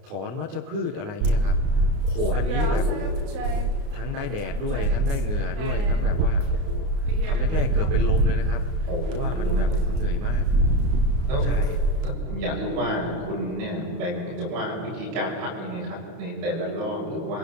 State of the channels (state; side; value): late; left; 31 ms